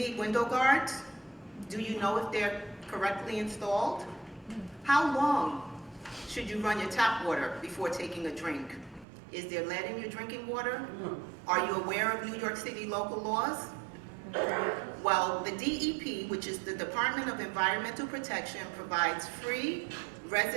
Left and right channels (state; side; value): drops out; left; at 9.1 s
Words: window guards? Do you know if they're correctly installed? How long should you run your tap water before taking a drink? Is there lead in your drinking water? Are you aware of New York City local laws? Well, the DEP, which is the Department of Environmental Protection, provides free